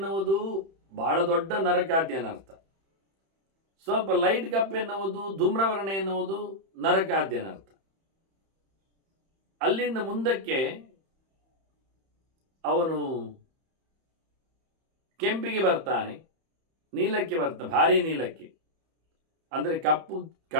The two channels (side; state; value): left; late; 31 ms